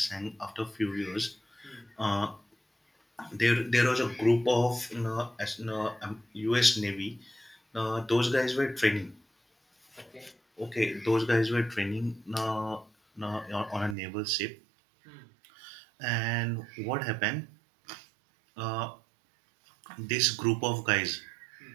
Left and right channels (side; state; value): left; drops out; at 14.0 s